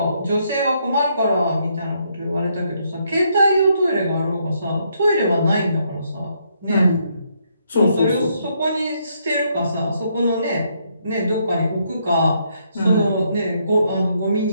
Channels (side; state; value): both; inverted; correlation -0.74